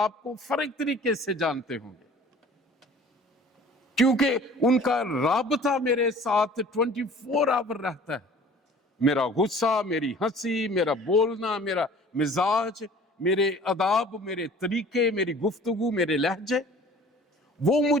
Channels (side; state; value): both; normal; correlation 0.48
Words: کو فرق طریقے سے جانتے ہوں گے، کیونکہ ان کا رابطہ میرے ساتھ 24 آور رہتا ہے۔ میرا غصہ، میری ہنسی، میرا بولنا، میرا مزاج، میرے آداب، میرے طریقے، میری گفتگو، میرے لہجے، وہ